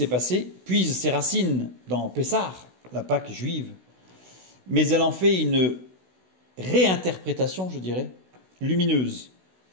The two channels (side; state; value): left; late; 16 ms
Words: passé puise ses racines dans Pessah, la Pâque juive, mais elle en fait une réinterprétation, je dirais, lumineuse.